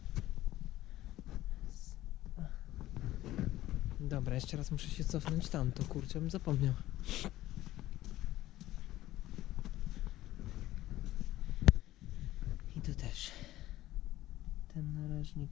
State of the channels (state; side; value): quieter; right; 15.3 dB